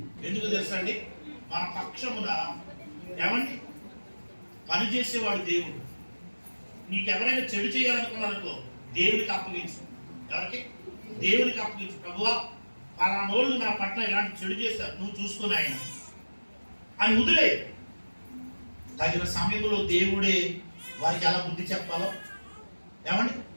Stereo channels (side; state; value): both; inverted; correlation -1.00